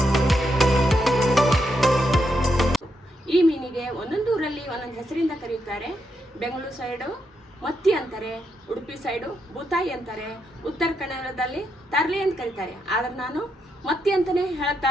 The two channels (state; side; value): normal; both; correlation 0.81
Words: ಈ ಮೀನಿಗೆ ಒಂದೊಂದು ಊರಲ್ಲಿ ಒಂದೊಂದು ಹೆಸರಿಂದ ಕರೆಯುತ್ತಾರೆ. ಬೆಂಗಳೂರು ಸೈಡು ಮತ್ತಿ ಅಂತಾರೆ, ಉಡುಪಿ ಸೈಡು ಬೂತಾಯಿ ಅಂತಾರೆ, ಉತ್ತರ ಕನ್ನಡದಲ್ಲಿ ತರ್ಲೆ ಅಂತ ಕರೀತಾರೆ. ಆದರೆ ನಾನು ಮತ್ತಿ ಅಂತಲೇ ಹೇಳ್ತಾ